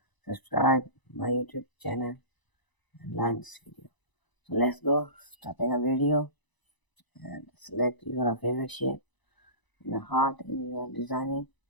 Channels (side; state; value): right; late; 1.0 ms